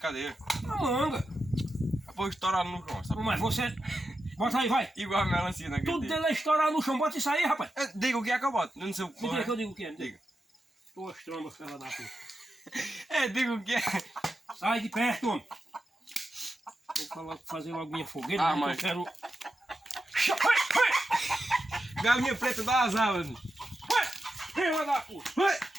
É uma manga. Vou estourar no chão, sabe? Mas você... Bota aí, vai. Igual a melancia naquele Tudo dia. dele é estourar no chão. Bota isso aí, rapaz. Diga o que é que eu boto. Eu não sei o que Me diga que é. eu digo o que é. Diga. Tuas trombas, fela da puta. Diga o que é. Sai de perto, homem. Vou fazer logo minha fogueira, Ah, mas mas- eu quero... Galinha preta dá as alas. Fela da puta.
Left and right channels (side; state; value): both; normal; correlation 0.89